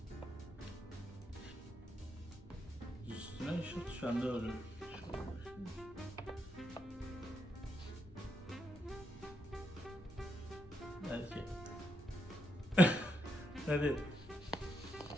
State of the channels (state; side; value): normal; both; correlation 0.81